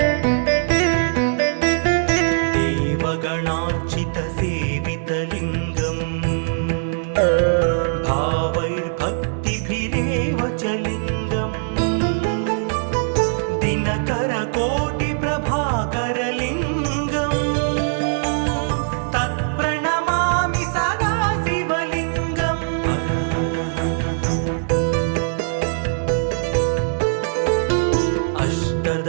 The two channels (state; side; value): silent; left; digital silence